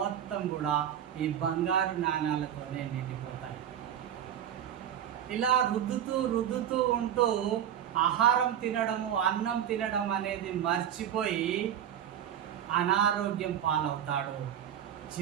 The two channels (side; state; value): left; quieter; 10.0 dB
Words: కూడా ఈ బంగారు నాణాలతోనే నిండిపోతాయి. ఇలా రుద్దుతూ ఉంటూ ఆహారం తినడము, అన్నం తినడం అనేది మర్చిపోయి అనారోగ్యం పాలవుతాడు,